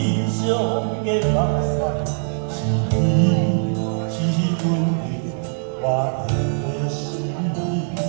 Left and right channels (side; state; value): left; silent; digital silence